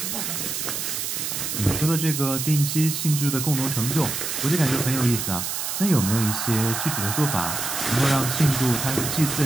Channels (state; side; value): noise; right; hiss, 3 dB below the sound